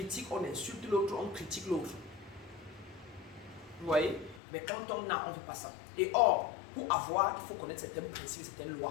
on insulte l'autre, on critique l'autre. Vous voyez? Mais quand on a, on ne veut pas ça. Et or, pour avoir, il faut connaître certains principes, certaines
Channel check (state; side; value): drops out; right; at 4.4 s